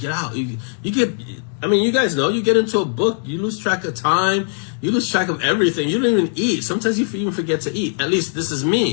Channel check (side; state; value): right; silent; digital silence